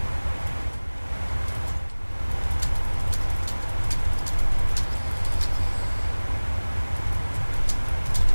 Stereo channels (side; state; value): both; inverted; correlation -1.00